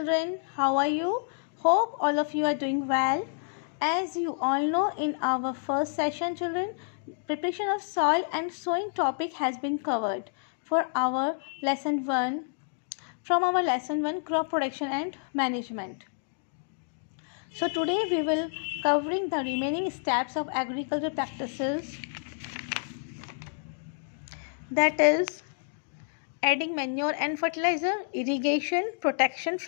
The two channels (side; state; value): right; silent; digital silence